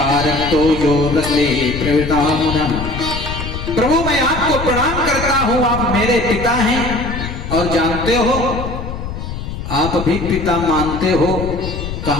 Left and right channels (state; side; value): noise; left; rumble, 7 dB below the sound